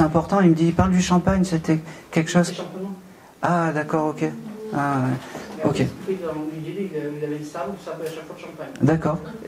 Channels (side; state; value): both; identical; correlation 1.00